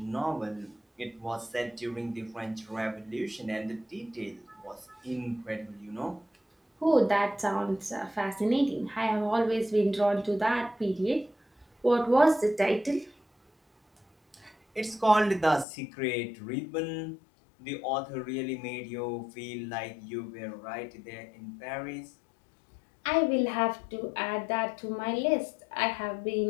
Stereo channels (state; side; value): drops out; right; at 15.7 s